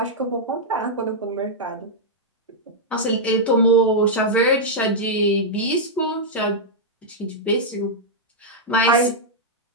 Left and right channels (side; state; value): both; normal; correlation -0.06